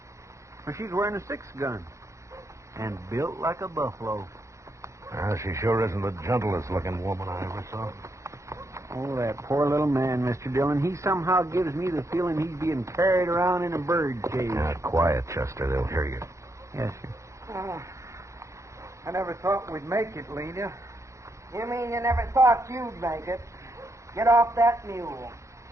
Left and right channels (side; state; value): left; late; 0.15 ms